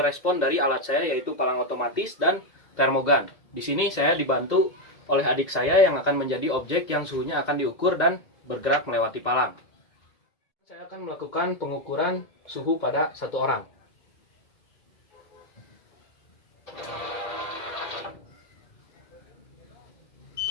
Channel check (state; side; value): late; right; 2.0 ms